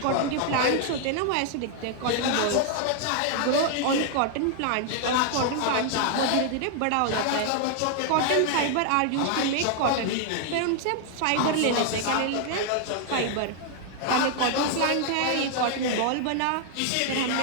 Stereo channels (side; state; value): both; different; correlation 0.00